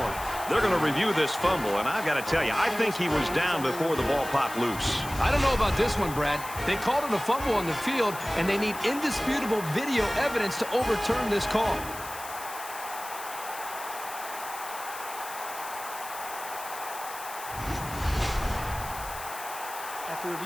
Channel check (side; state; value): left; noise; hiss, 12 dB below the sound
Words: They're going to review this fumble, and I've got to tell you, I think he was down before the ball popped loose. I don't know about this one, Brad. They called it a fumble on the field, and they need indisputable video evidence to overturn this call. After